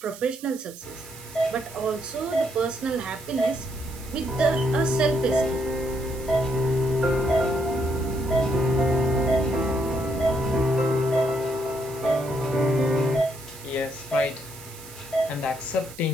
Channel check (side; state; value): right; noise; hiss, 17 dB below the sound